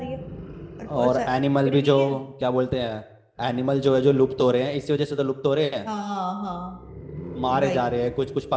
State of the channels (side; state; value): both; identical; correlation 1.00